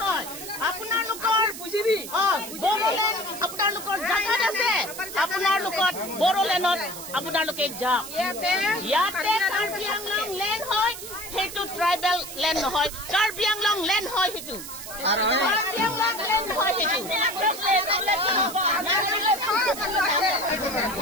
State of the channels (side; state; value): right; noise; hiss, 11 dB below the sound